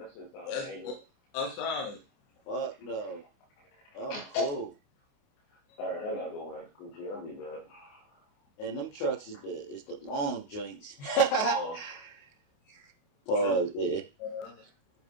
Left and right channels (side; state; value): right; late; 28 ms